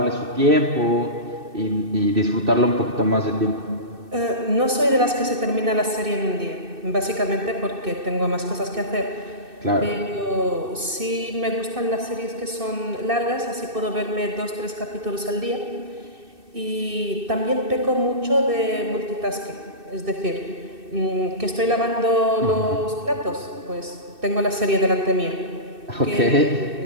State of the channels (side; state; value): left; late; 2.6 ms